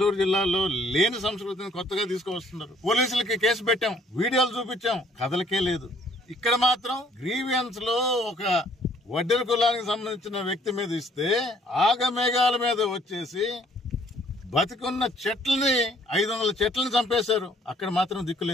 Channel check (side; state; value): both; normal; correlation 0.61